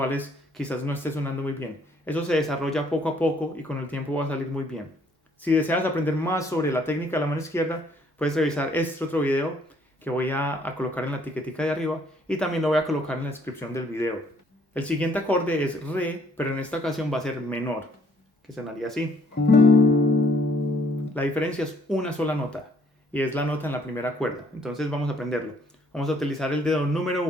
quizás no esté sonando muy bien. Eso se desarrolla poco a poco y con el tiempo va a salir muy bien. Si deseas aprender más sobre la técnica de la mano izquierda, puedes revisar este otro video que voy a colocar en la etiquetica de arriba y también lo voy a colocar en la descripción del video. El siguiente acorde es Re, pero en esta ocasión va a ser menor, que sonaría así. La diferencia es una sola nota y es la nota en la primera cuerda. Entonces vamos a aprenderlo. Vamos a utilizar el dedo número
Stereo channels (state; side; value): normal; both; correlation 0.64